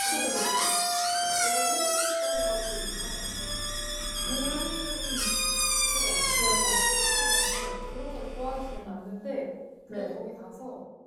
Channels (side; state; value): both; identical; correlation 1.00